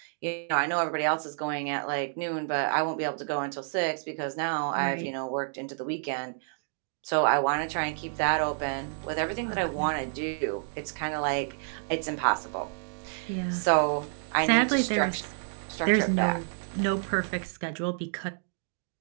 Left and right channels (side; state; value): left; silent; digital silence